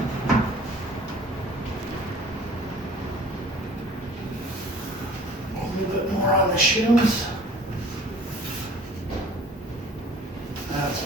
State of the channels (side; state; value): both; normal; correlation 0.49